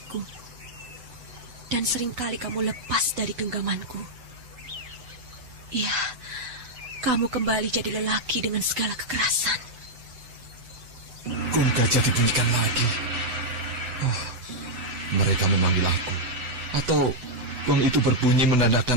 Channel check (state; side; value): late; left; 7.8 ms